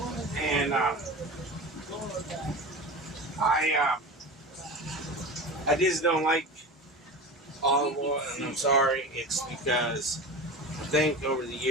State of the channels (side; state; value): both; normal; correlation 0.30